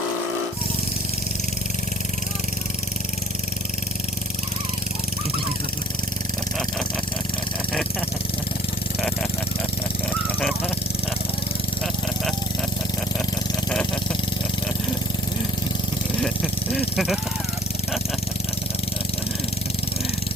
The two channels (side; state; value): both; normal; correlation 0.56